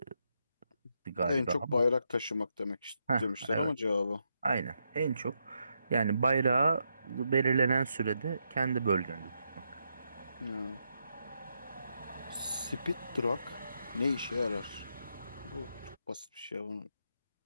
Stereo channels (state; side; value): inverted; both; correlation -0.81